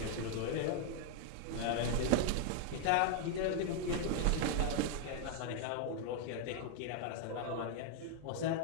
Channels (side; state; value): both; different; correlation 0.00